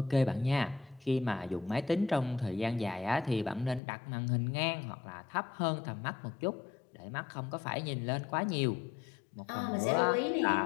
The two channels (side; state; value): right; drops out; at 3.8 s